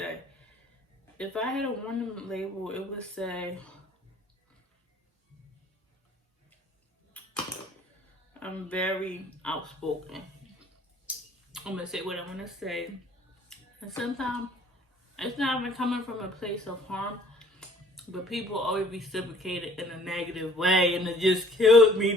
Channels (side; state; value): both; normal; correlation 0.56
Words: If I had a warning label, it would say, I'm very outspoken. I'm going to say what I'm going to say. And sometimes it's not even coming from a place of harm, but people always reciprocate it in a negative way, and it just kills me